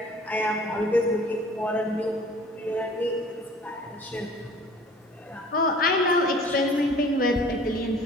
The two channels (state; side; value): normal; both; correlation 0.48